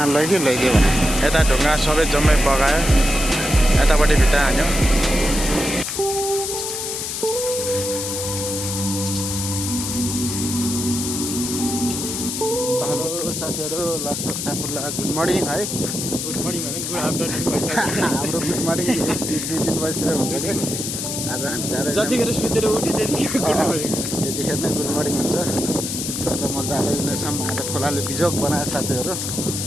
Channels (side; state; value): left; noise; hiss, 4 dB below the sound